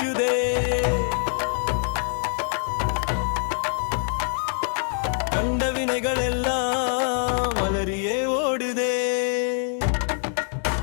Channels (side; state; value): right; silent; 62 dB below the other